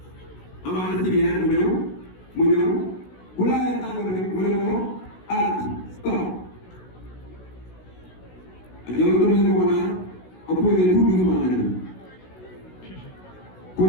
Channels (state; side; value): late; right; 16 ms